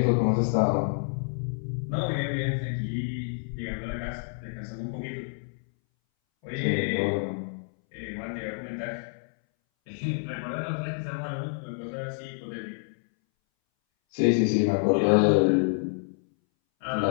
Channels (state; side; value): silent; right; 59 dB below the other